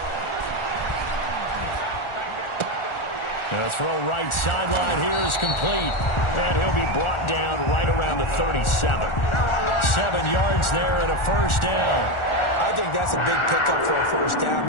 The throw right sideline here is complete. And he'll be brought down right around the 37. 7 yards there and a first down. I think that's a big pickup for a first down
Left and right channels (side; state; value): right; late; 1.4 ms